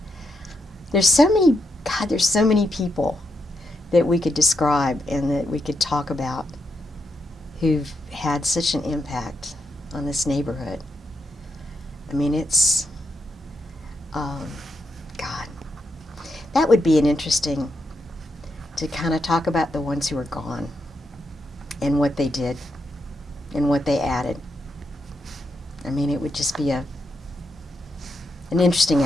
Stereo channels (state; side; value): normal; both; correlation 0.82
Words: there's so many people that we could describe and that we could talk about who've had such an impact on this neighborhood. It's, God, that would be an interesting, to kind of talk about the ones who are gone and what they did and what they added. It would just be an interesting